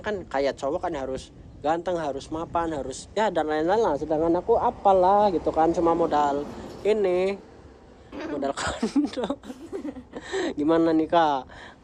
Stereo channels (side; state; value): both; identical; correlation 1.00